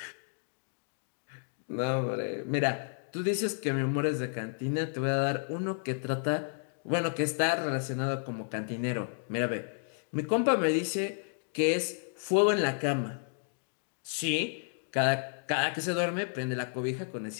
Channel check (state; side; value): silent; right; digital silence